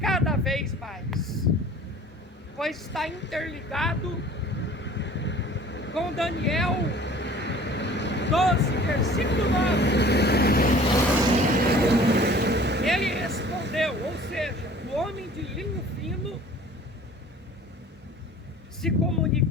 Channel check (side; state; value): both; normal; correlation 0.48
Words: vez mais. Pois está interligado com Daniel 12, versículo 9. Ele respondeu, ou seja, o homem de linho fino se